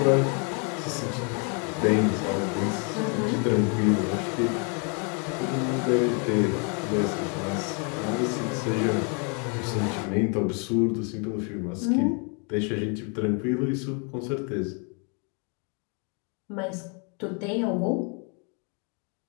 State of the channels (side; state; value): right; quieter; 37.2 dB